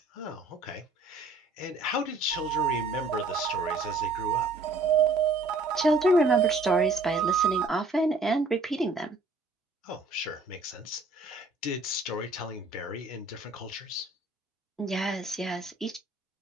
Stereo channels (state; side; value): quieter; left; 3.3 dB